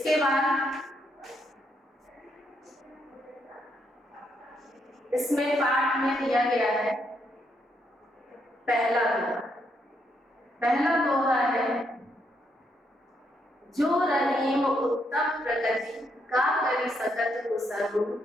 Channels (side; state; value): both; normal; correlation 0.76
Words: बाद इसमें पाठ में दिया गया है पहला दोहा। पहला दोहा है जो रहीम उत्तम प्रकृति का करी सकत कुसरु